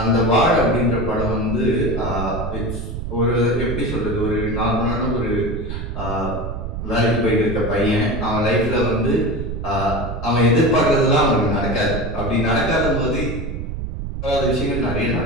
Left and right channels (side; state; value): right; noise; rumble, 6 dB below the sound